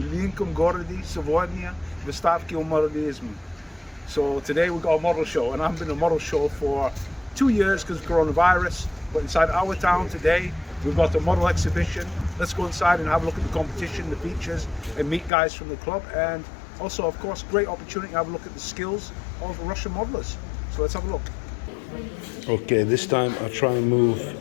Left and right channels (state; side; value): drops out; right; at 15.3 s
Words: городе сегодня выставки модернизма. So today we got a model show, and I haven't been to a model show for 2 years because of coronavirus. But inside our town today, we've got a model exhibition. Let's go inside and have a look at the competition, the features, and meet guys from the club. And also, of course, great opportunity to have a look at the skills of Russian modelers. So let's have a look. Okay, this time I'll try and move